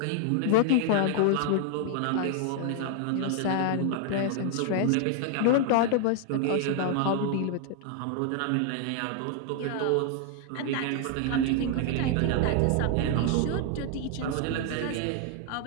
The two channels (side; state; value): both; different; correlation 0.00